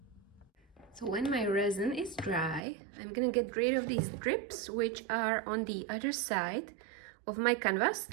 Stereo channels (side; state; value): left; drops out; at 2.6 s